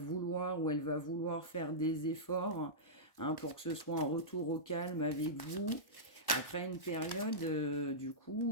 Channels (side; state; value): right; late; 1.1 ms